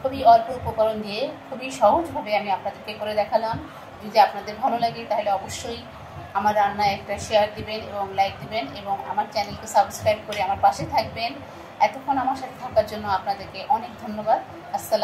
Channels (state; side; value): identical; both; correlation 1.00